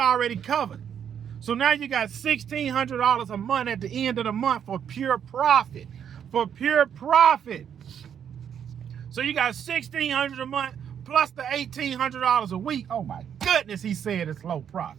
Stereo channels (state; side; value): quieter; left; 8.6 dB